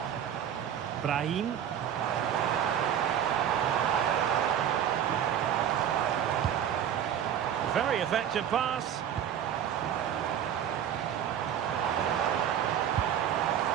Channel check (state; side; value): quieter; left; 9.5 dB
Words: Brahim. Very effective pass.